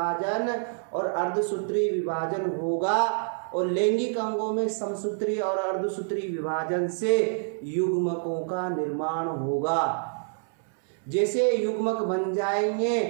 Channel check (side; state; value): left; silent; 60 dB below the other